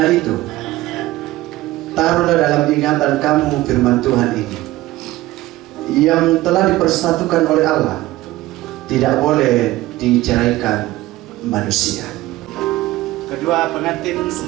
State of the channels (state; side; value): quieter; left; 17.4 dB